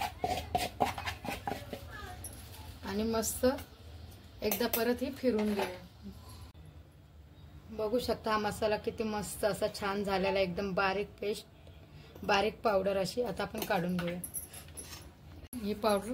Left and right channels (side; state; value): both; identical; correlation 1.00